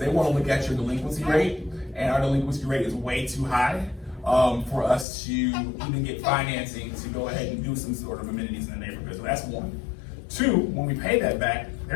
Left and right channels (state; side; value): drops out; right; at 5.1 s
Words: want to look at your delinquency rate, and our delinquency rate is way too high for us to even get financing to go ahead and do some sort of amenities in the neighborhood. So that's one. Two, when we pay that back,